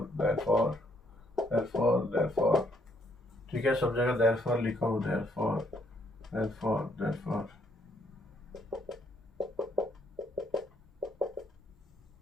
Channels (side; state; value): both; normal; correlation 0.70